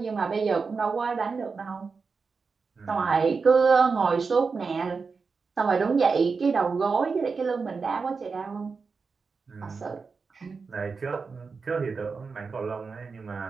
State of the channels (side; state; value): left; quieter; 4.8 dB